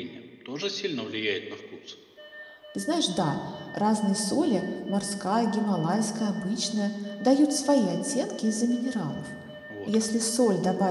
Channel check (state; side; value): identical; both; correlation 1.00